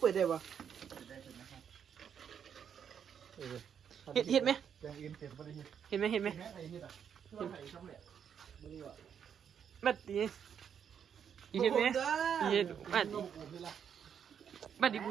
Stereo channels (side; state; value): left; quieter; 8.0 dB